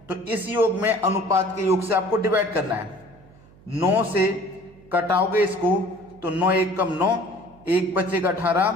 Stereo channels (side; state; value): right; noise; hum, 25 dB below the sound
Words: तो इस योग में अनुपात के योग से आपको डिवाइड करना है। 9 से कटाओगे इसको तो 9 1 कम 9, 1 बचेगा 18,